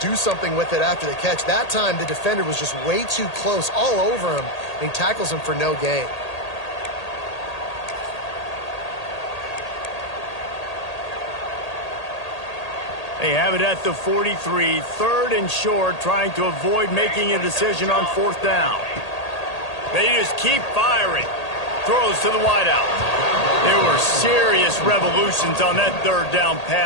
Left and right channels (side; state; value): right; late; 1.8 ms